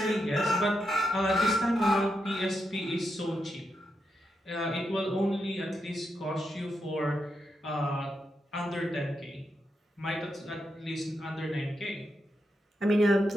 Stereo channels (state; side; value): normal; both; correlation 0.84